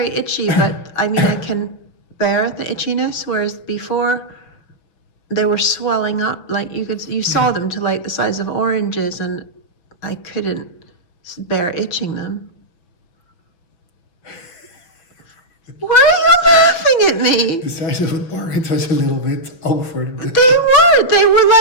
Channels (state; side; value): late; right; 6.0 ms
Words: itchy, but I mean I can bear the itchiness, whereas before they were swelling up, like you saw them to like the size of oranges, and I couldn't bear itching them. Why are you laughing at me? The size of an orange was a little bit over. They were